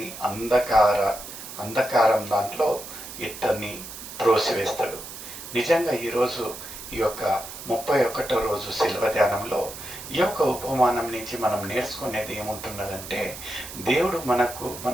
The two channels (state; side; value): noise; right; hiss, 12 dB below the sound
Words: అంధకారం దాంట్లో ఇతన్ని త్రోసివేస్తాడు. నిజంగా ఈరోజు ఈ యొక్క 31వ రోజు శిల్వ ధ్యానంలో ఈ యొక్క ఉపమానం నుంచి మనం నేర్చుకునేది ఏముంటున్నదంటే, దేవుడు